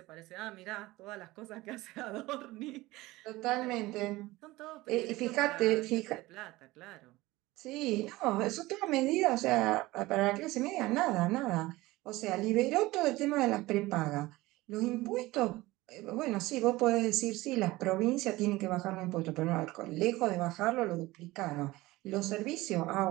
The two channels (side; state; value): left; quieter; 19.3 dB